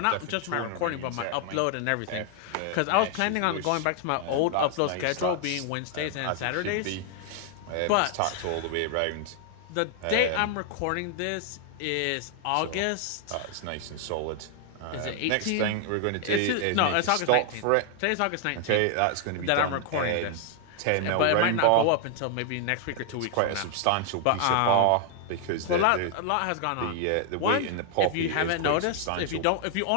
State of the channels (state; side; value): different; both; correlation 0.00